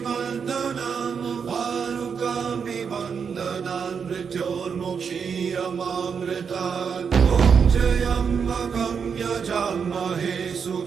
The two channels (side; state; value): left; quieter; 6.4 dB